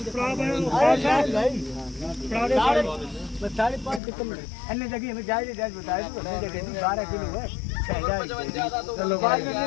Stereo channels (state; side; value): drops out; right; at 4.0 s